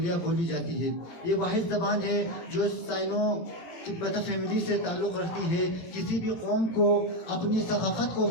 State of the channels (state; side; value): late; right; 17 ms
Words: بولی جاتی ہے. یہ واحد زبان ہے جو سائنو تبت فیملی سے تعلق رکھتی ہے. کسی بھی قوم کو اپنی ثقافت کو